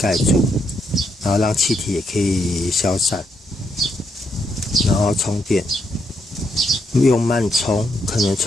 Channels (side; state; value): both; normal; correlation 0.77